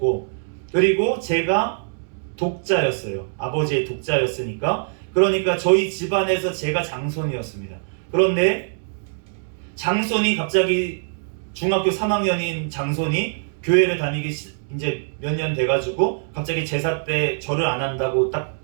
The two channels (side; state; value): left; silent; digital silence